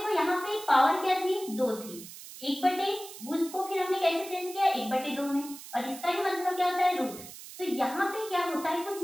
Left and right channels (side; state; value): right; noise; hiss, 14 dB below the sound